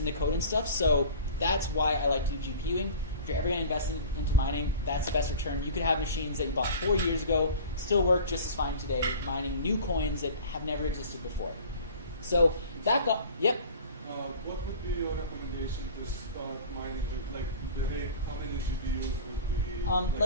the code and stuff, so that's why I like to do GPUing. If you're ever going to invest into mining, that's the best return. You could have machines that you bought 4 years ago, still work just as fine today, mining new coins that have never existed before. So that got, yep. What would be your recommendation to start mining with? Like, how many GPUs would be?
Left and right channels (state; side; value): inverted; both; correlation -0.41